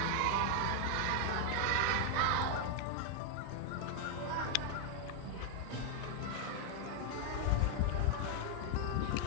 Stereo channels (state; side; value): different; both; correlation 0.00